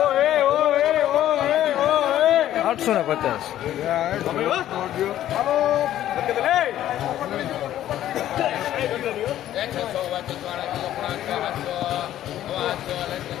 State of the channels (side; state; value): right; quieter; 12.5 dB